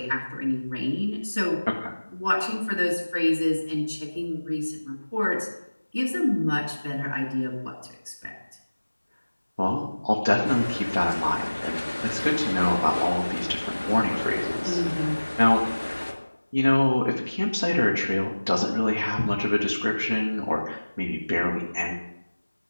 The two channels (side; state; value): both; inverted; correlation -1.00